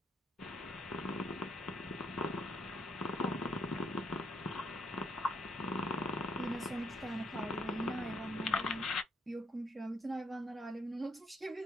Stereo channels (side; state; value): both; normal; correlation 0.72